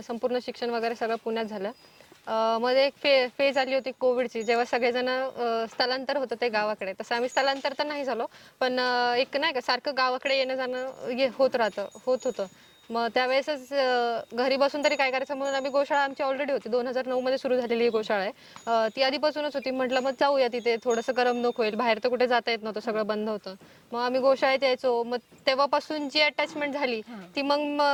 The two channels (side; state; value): both; identical; correlation 1.00